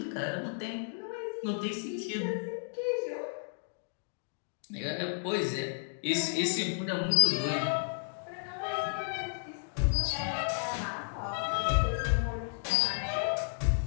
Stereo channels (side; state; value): right; silent; digital silence